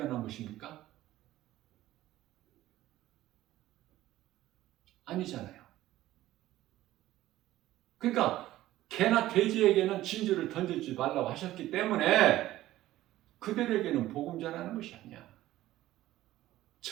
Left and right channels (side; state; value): left; quieter; 15.1 dB